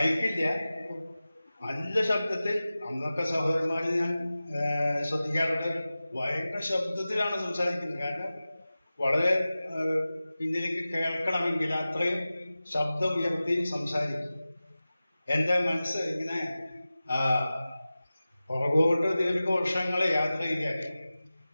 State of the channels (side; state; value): both; inverted; correlation -0.96